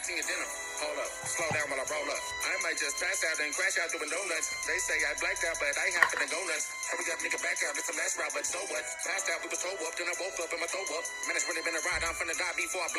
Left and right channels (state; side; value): identical; both; correlation 1.00